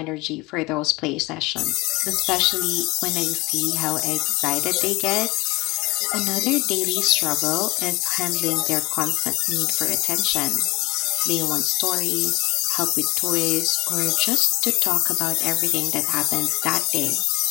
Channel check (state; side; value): quieter; right; 22.8 dB